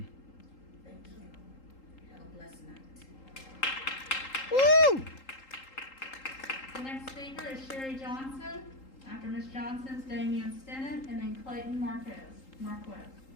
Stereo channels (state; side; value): late; right; 3.8 ms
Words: Thank you. Have a blessed night. Woo! The next speaker is Sherry Johnson. After Ms. Johnson's Damian Stennett, and then Clayton Marquez.